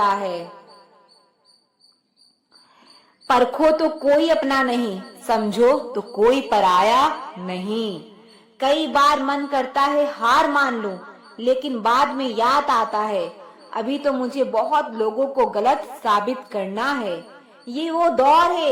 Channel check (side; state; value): both; identical; correlation 1.00